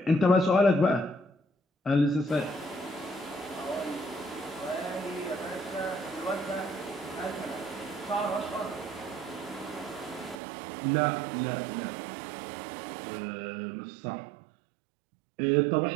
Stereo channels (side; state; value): left; drops out; at 10.4 s